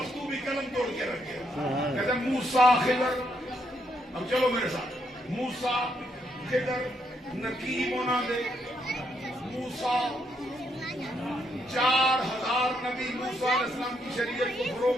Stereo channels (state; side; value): normal; both; correlation 0.76